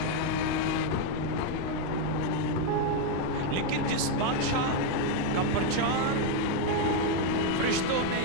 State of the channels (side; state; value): both; different; correlation 0.01